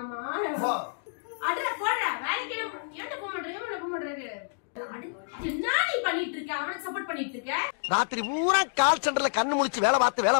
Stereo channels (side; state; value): right; silent; digital silence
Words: அடடா போடா வேலைக்கு ஏன்டா போக மாட்டேங்க? என்ன போக மாட்டேங்க? என்ன நீ பண்ணிட்டு இருக்க? அவனை சப்போர்ட் பண்ணிட்டு இருக்க? ராத்திரி பூரா கால் சென்டர்ல கண்ணு முழிச்சு வேலை